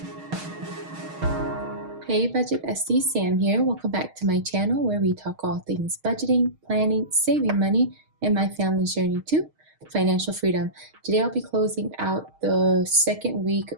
Hey Budget Bestie, Sam here. Welcome back to my channel where we talk all things budgeting, planning, saving money, and my family's journey to financial freedom. Today I'll be closing out the second week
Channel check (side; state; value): left; late; 6.4 ms